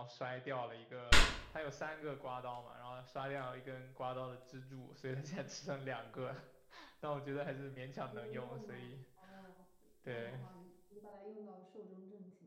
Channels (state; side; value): identical; both; correlation 1.00